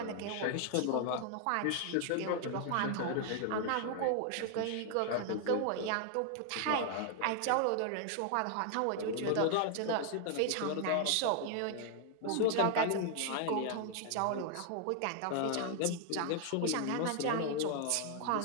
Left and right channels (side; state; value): both; different; correlation 0.00